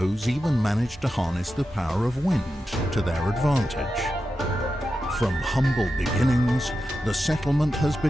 even managed to harness the power of wind to their advantage. From humble beginnings, the settlement has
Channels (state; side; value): normal; both; correlation 0.90